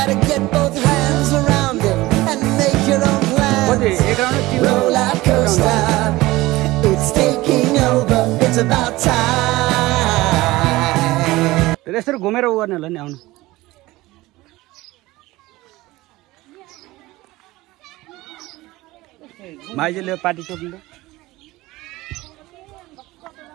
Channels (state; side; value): quieter; left; 19.1 dB